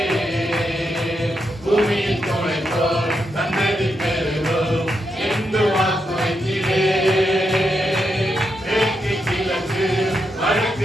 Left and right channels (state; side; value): normal; both; correlation 0.83